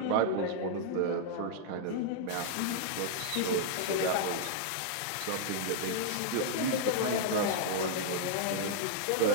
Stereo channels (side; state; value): both; different; correlation -0.01